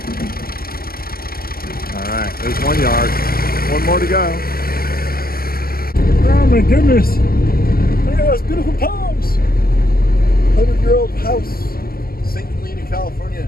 All right, there's one yard. One more to go. Oh my goodness. Look at those beautiful palms. 100-year-old house, St. Helena, California.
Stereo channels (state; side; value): late; right; 0.43 ms